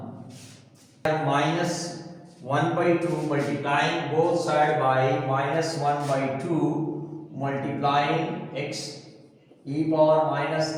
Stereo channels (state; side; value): identical; both; correlation 1.00